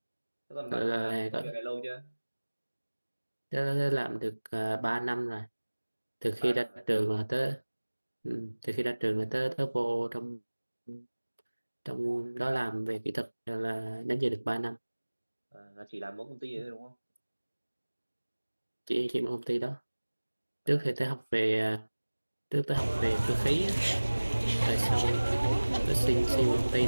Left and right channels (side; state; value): both; inverted; correlation -1.00